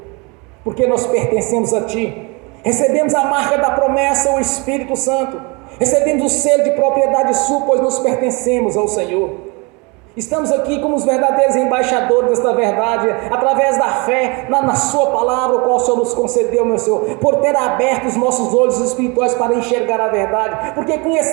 porque nós pertencemos a Ti, recebemos a marca da promessa, o Espírito Santo, recebemos o selo de propriedade sua, pois nos pertencemos ao Senhor. Estamos aqui como os verdadeiros embaixadores desta verdade, através da fé na sua palavra, o qual o Senhor nos concedeu, meu Senhor, por ter aberto os nossos olhos espirituais para enxergar a verdade, porque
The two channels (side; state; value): left; quieter; 29.1 dB